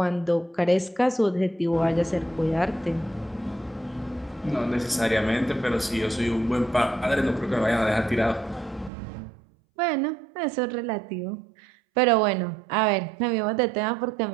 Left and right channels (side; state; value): left; drops out; at 8.9 s